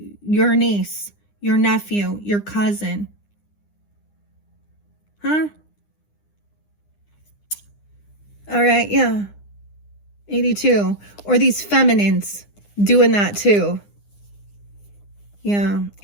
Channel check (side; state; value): right; late; 9.8 ms